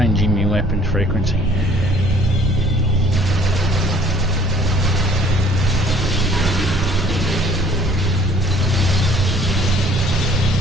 my weapon frequency.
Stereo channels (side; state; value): both; normal; correlation 0.56